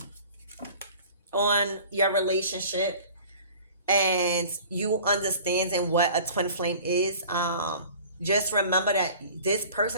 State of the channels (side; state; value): both; inverted; correlation -0.45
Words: on your relationship, and you understanding what a twin flame is. Just remember that this